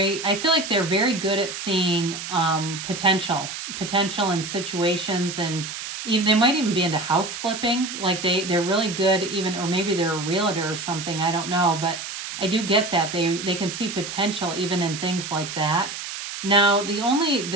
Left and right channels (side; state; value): right; noise; hiss, 8 dB below the sound